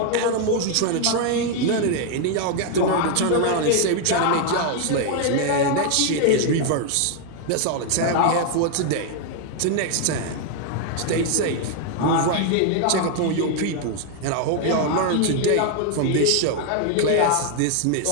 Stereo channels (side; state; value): both; different; correlation 0.01